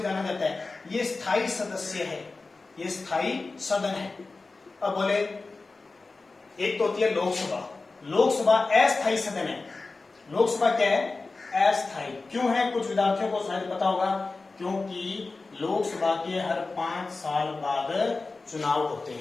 जाना जाता है, ये स्थायी सदस्य है, ये स्थायी सदन है। अब बोले एक तो होती है लोकसभा, लोकसभा अस्थायी सदन है। लोकसभा क्या है, अस्थायी। क्यों है, कुछ विद्यार्थियों को शायद पता होगा, क्योंकि लोकसभा के हर 5 साल बाद चुनाव होते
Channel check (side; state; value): right; quieter; 3.7 dB